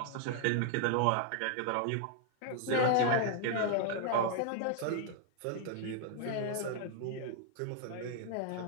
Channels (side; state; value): both; different; correlation 0.00